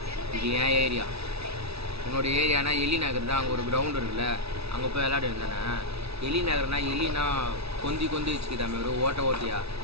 இது என் ஏரியா. உன்னோட ஏரியானா எலி நகர் தான். அங்கே ஒரு கிரவுண்ட் இருக்குல்ல, அங்கே போய் விளையாட வேண்டானே. எலி நகர்னா எலினா கொந்தி வச்சுக்கிட்டாமே ஒரு ஓட்டியா,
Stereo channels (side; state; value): left; late; 0.78 ms